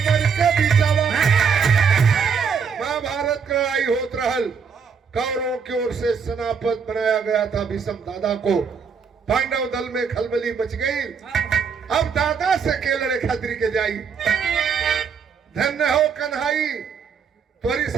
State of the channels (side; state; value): left; quieter; 6.2 dB